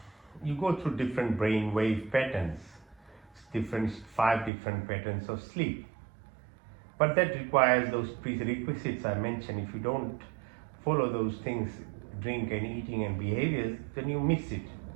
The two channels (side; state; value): left; drops out; at 4.5 s